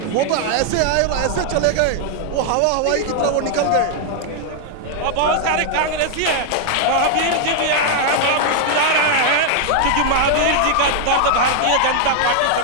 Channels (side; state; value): both; different; correlation 0.00